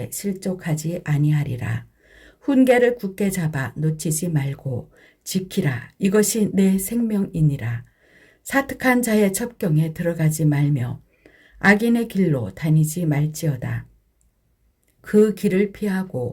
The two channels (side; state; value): both; identical; correlation 1.00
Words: 실족하지 아니하리라. 훈계를 굳게 잡아 놓치지 말고 지키라. 이것이 내 생명이니라. 사특한 자의 첩경에 들어가지 말며 악인의 길로 다니지 말지어다. 그 길을